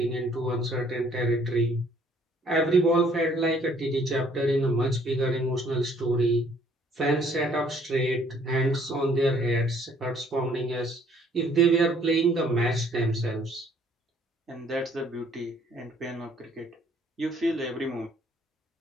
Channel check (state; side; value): normal; both; correlation 0.61